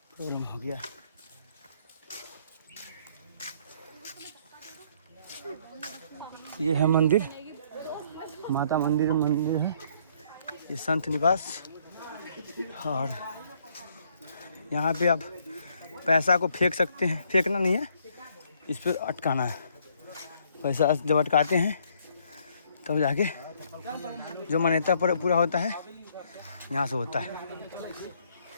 प्रॉब्लम हो गया। ये है मंदिर, माता मंदिर है, ये संत निवास। और यहाँ पे आप पैसा को फेंक सकते हैं, फेंकना नहीं है इस पर अटकाना है। पैसा जब अटकाते हैं तब जाके जो मान्यता पर पूरा होता है यहाँ से होता है।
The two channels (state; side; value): inverted; both; correlation -0.66